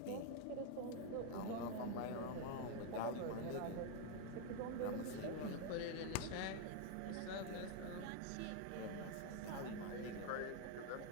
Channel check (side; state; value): both; different; correlation 0.01